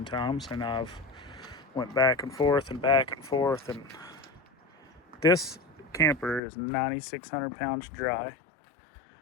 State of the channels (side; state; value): right; drops out; at 6.4 s